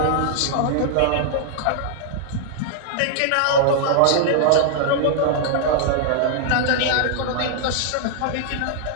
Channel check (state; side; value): different; both; correlation -0.01